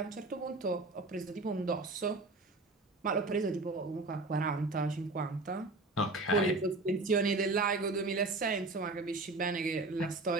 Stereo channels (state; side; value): quieter; left; 3.2 dB